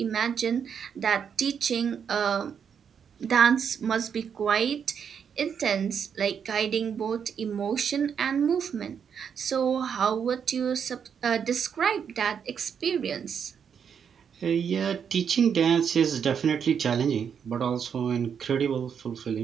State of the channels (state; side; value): quieter; left; 7.4 dB